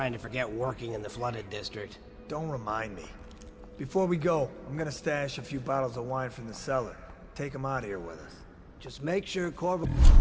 to forget working in the flooded district. Don't remind me. Before we go, I'm gonna stash a few bottles of wine from the cellar. Take them out of here with us. Just make sure Corvo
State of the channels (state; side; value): identical; both; correlation 1.00